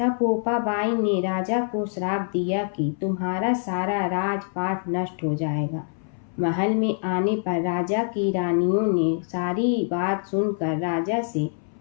पोपा बाई ने राजा को श्राप दिया कि तुम्हारा सारा राजपाट नष्ट हो जाएगा। महल में आने पर राजा की रानियों ने सारी बात सुनकर राजा से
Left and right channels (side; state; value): right; silent; 62 dB below the other